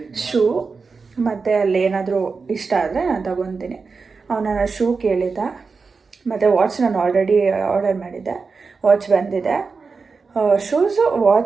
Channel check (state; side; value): quieter; left; 4.7 dB